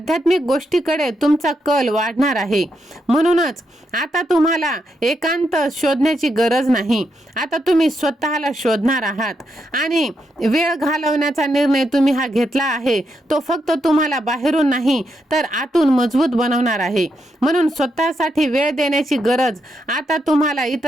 गोष्टीकडे तुमचा कल वाढणार आहे. म्हणूनच आता तुम्हाला एकांत शोधण्याची गरज नाही. आता तुम्ही स्वतःला शोधणार आहात आणि वेळ घालवण्याचा निर्णय तुम्ही हा घेतला आहे, तो फक्त तुम्हाला बाहेरून नाही तर आतून मजबूत बनवणार आहे. म्हणून स्वतःसाठी वेळ देण्याची गरज आता तुम्हाला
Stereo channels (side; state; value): both; normal; correlation 0.82